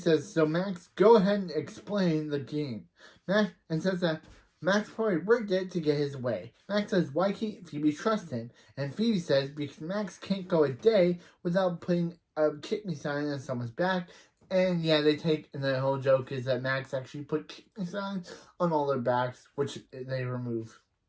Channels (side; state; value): both; identical; correlation 1.00